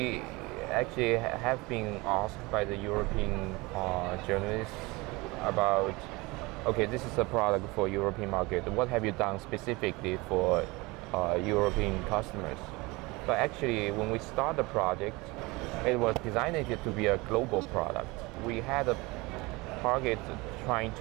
actually have been asked by the European journalists about, okay, this is a product for European market. What have you done specifically for European customers? But actually, when we start the project, it was designed to be a global product. We had a target trying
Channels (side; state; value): left; quieter; 23.7 dB